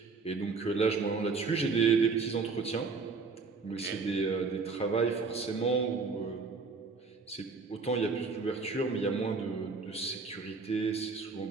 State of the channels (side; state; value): left; quieter; 4.5 dB